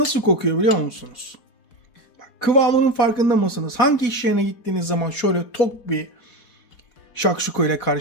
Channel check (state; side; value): late; right; 4.1 ms